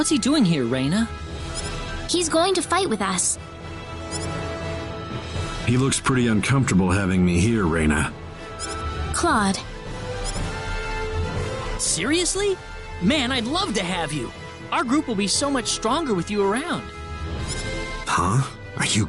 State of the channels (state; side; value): identical; both; correlation 1.00